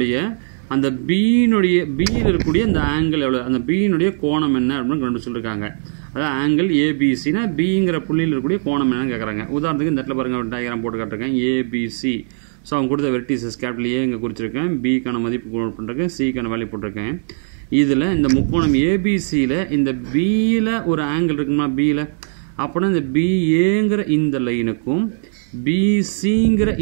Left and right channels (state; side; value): silent; left; digital silence